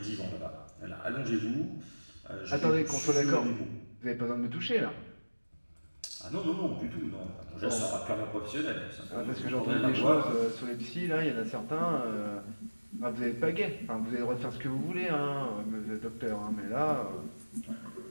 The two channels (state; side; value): inverted; both; correlation -1.00